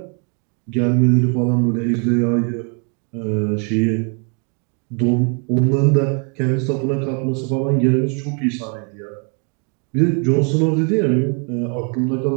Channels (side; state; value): left; quieter; 37.4 dB